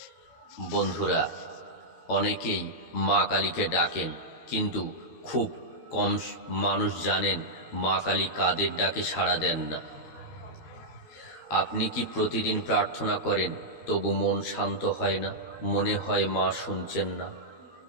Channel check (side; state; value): right; late; 13 ms